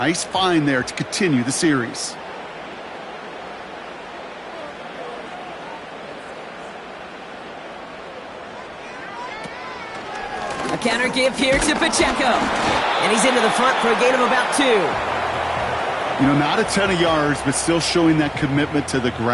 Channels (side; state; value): both; identical; correlation 1.00